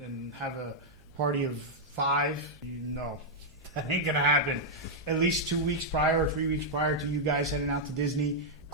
have a party of 5, no, that ain't going to happen. At least 2 weeks prior or 3 weeks prior to you guys heading out to Disney,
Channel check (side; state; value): right; noise; hum, 26 dB below the sound